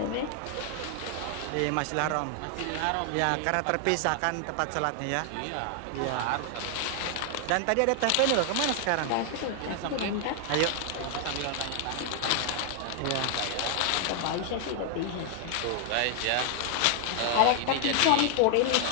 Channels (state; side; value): different; both; correlation 0.00